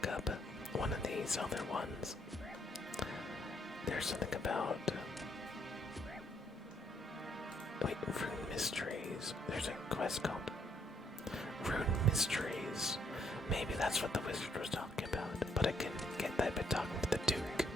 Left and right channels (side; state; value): both; normal; correlation 0.70